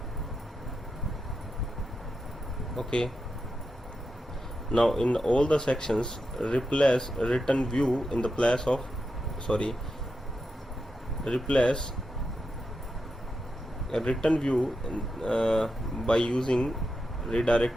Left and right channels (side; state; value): both; normal; correlation 0.88